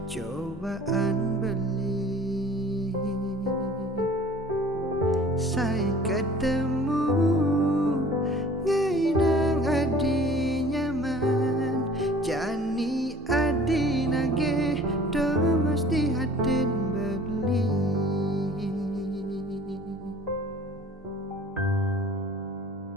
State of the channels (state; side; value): normal; both; correlation 0.48